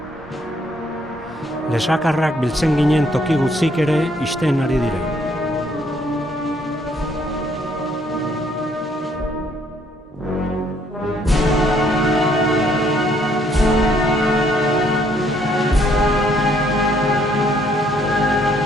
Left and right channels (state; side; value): normal; both; correlation 0.67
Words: Lesakarrak biltzen ginen toki gutzik ere isten ari dire.